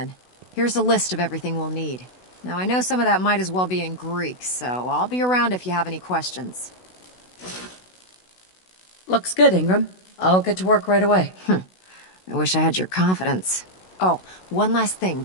Here's a list of everything we'll need. Now, I know some of that might as well be in Greek, so I'll be around if you have any questions. Looks good, Ingram. I'll get to work right away. I wish I had your confidence. Oh, one last thing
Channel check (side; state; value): right; late; 16 ms